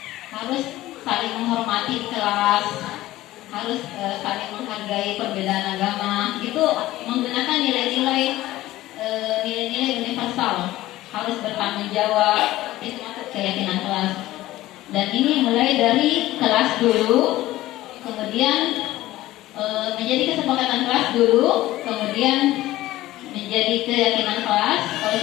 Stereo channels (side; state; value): right; quieter; 16.2 dB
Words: saling menghormati kelas, harus saling menghargai perbedaan agama. Itu itu menggunakan nilai-nilai universal, harus bertanggung jawab, itu masuk keyakinan kelas. Dan ini mulai dari kelas dulu, kemudian menjadi kesepakatan kelas dulu, kemudian menjadi keyakinan kelas. Kalau